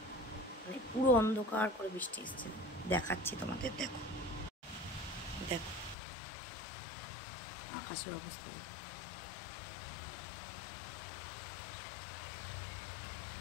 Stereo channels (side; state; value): right; drops out; at 6.0 s